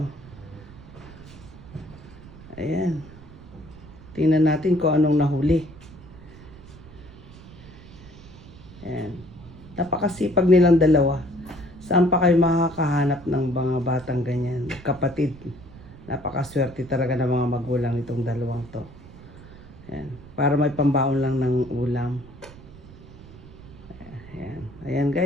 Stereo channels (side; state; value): right; noise; rumble, 19 dB below the sound